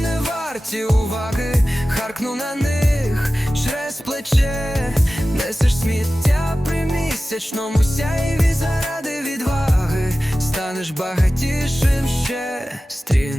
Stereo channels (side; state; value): both; normal; correlation 0.96